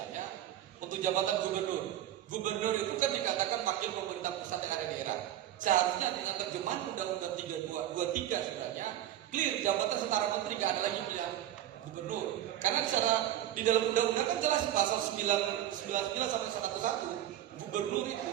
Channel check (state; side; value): quieter; left; 12.3 dB